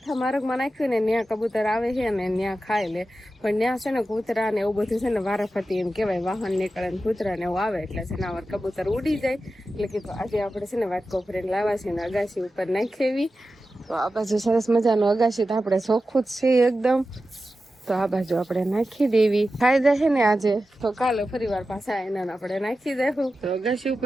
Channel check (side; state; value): both; normal; correlation 0.92